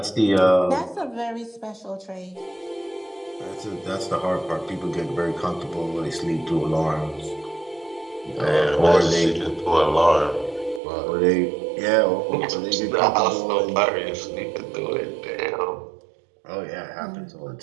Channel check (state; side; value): drops out; left; at 10.8 s